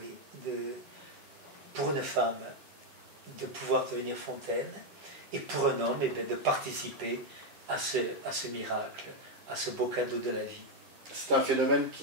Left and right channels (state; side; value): late; left; 10 ms